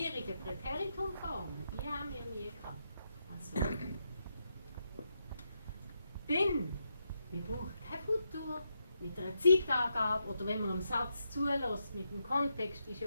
Präteritumformen, die haben wir nie gehabt. Also. Dann, wir brauchen kein Futur mit einer Zeitangabe oder wenn man einen Satz zulässt mit dem Kontext, ist ja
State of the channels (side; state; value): both; inverted; correlation -0.83